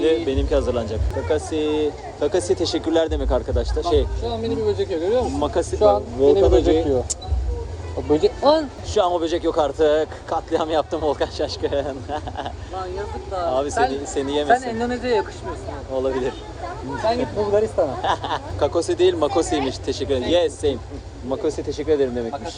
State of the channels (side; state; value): both; identical; correlation 1.00